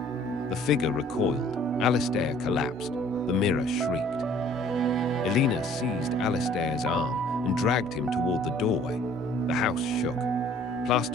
The figure recoiled. Alastair collapsed. The mirror shrieked. Eleanor seized Alastair's arm and dragged him toward the doorway. The house shook.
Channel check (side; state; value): both; normal; correlation 0.55